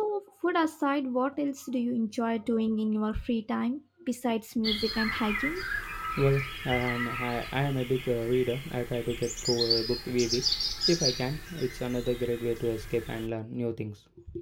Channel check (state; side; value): identical; both; correlation 1.00